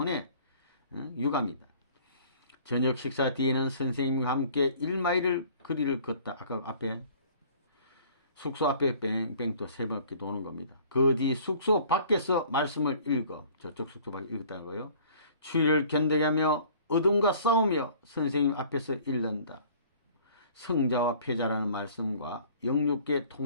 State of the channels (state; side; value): inverted; both; correlation -0.52